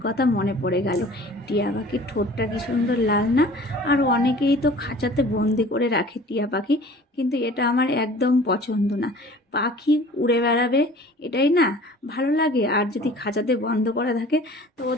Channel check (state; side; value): normal; both; correlation 0.46